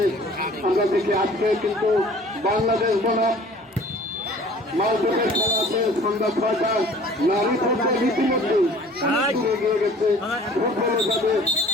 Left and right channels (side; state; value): both; normal; correlation 0.50